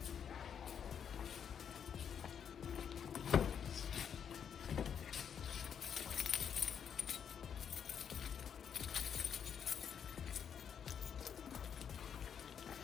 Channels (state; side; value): quieter; right; 7.9 dB